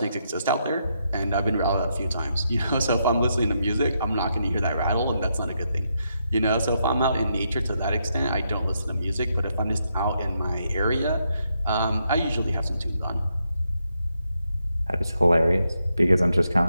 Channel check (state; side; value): inverted; both; correlation -0.80